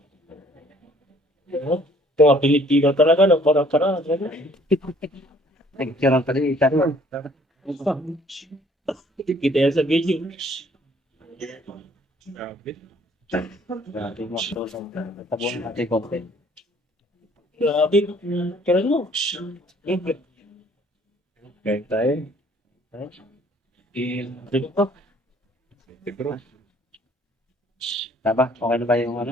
Ito nga Pilipino talaga, no? Para-para. Nagkirang pa rin Ethan. Kita yan sa video. Grabe. Grabe mo. Tabuan natin content. Grabe. Kaya mo. Kain tayo. Dito. Siguro. Taba, okay na ba yung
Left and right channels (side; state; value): both; normal; correlation 0.59